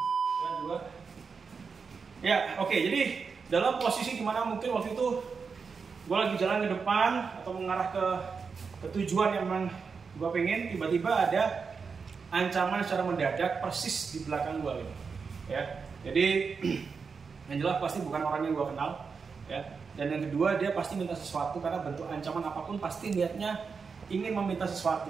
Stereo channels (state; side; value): quieter; left; 5.4 dB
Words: Ya, oke. Jadi dalam posisi dimana mungkin waktu itu gue lagi jalan ke depan atau mengarah ke tujuan yang memang gue pengen, tiba-tiba ada ancaman secara mendadak persis di belakang gue gitu. Ya, jadi yang jelas pasti bukan orang yang gue kenal ya. Dan yang kedua, dia pasti minta sesuatu, karena bentuk ancaman apapun pasti niatnya ingin meminta